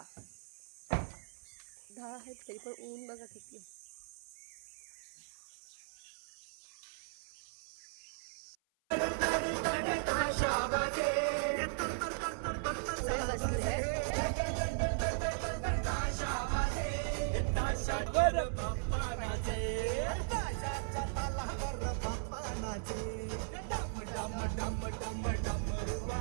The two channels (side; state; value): left; silent; 53 dB below the other